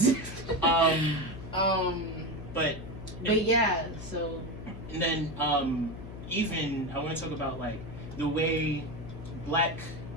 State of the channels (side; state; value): left; noise; hum, 11 dB below the sound